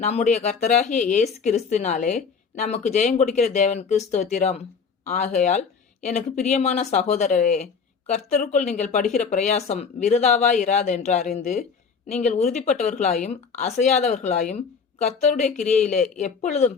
கர்த்தராகிய இயேசு கிறிஸ்துவினாலே நமக்கு ஜெயம் கொடுக்கிற தேவனுக்கு ஸ்தோத்திரம். ஆகையால் எனக்கு பிரியமான சகோதரரே, கர்த்தருக்குள் நீங்கள் படுகிற பிரயாசம் விருதாவாய் இராது என்று அறிந்து நீங்கள் உறுதிப்பட்டவர்களாயும் அசையாதவர்களாயும் கர்த்தருடைய கிரியையிலே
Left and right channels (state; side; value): quieter; right; 5.8 dB